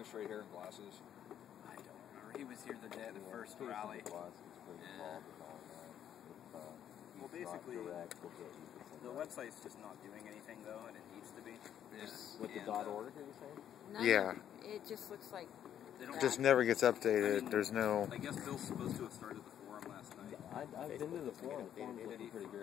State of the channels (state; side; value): quieter; right; 10.1 dB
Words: straight hair and glasses? I don't remember. He was here the day of the first rally. Well, basically, the website's just not doing anything though, and it needs to be. With the .org, are you saying? No, Yeah. It just looks like. Just never gets updated. I mean, There's no. I guess Bill's supposed to have started the forum last night. I've been to the forum. The forum's looking pretty